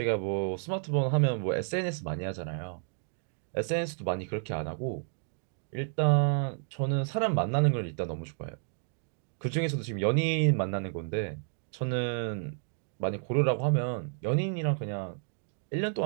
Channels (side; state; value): left; silent; digital silence